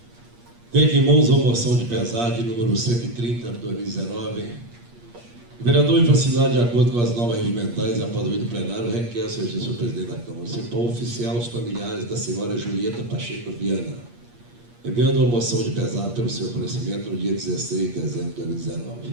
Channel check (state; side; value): late; left; 8.5 ms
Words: Tenho aqui em mãos a moção de pesar de número 130 de 2019. O vereador, em facilidade de acordo com as normas regimentais e após o do plenário, requer ao Excelentíssimo Presidente da Câmara Municipal oficial os familiares da senhora Julieta Pacheco Viana, enviando uma moção de pesar pelo seu falecimento no dia 16 de dezembro de